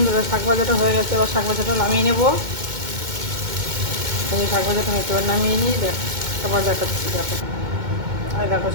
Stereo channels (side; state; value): left; late; 2.2 ms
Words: শাক ভাজাটা হয়ে গেছে, এবার শাক ভাজাটা নামিয়ে নেবো। এই শাক ভাজাটা হয়তো এবার নামিয়ে নিই, দেখ আবার দেখাচ্ছি। দেখো, আর দেখো